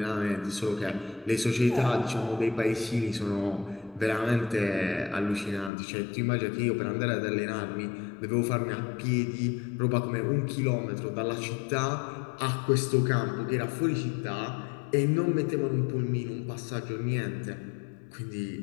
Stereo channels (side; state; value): right; drops out; at 5.7 s